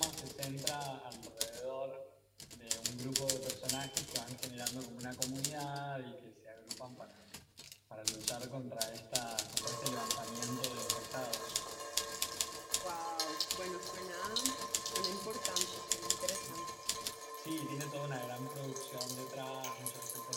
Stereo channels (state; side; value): identical; both; correlation 1.00